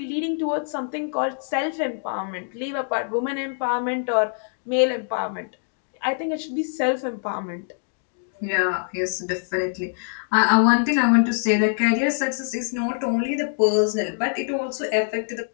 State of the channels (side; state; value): right; silent; digital silence